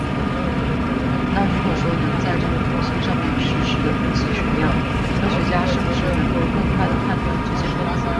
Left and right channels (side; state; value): both; identical; correlation 1.00